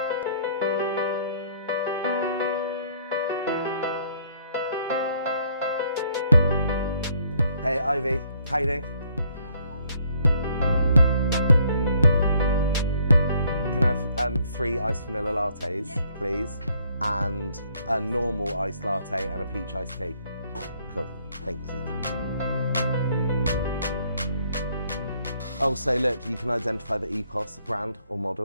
Hey, Ivy. How you doing? Can I have 3 iced vanilla lattes, please? And a normal iced latte and a peach iced tea. Cool. Thank you. Oh, so look, you can identify the EPOS brand or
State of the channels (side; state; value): both; inverted; correlation -0.66